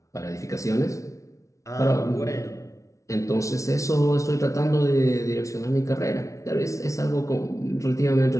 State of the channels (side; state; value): right; late; 0.15 ms